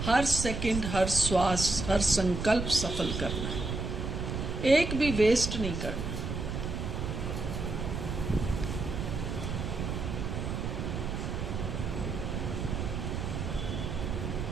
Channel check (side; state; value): right; noise; rumble, 3 dB below the sound